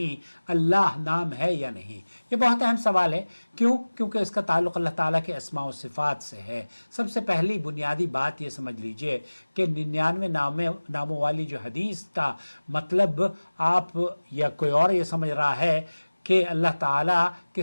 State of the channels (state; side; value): inverted; both; correlation -1.00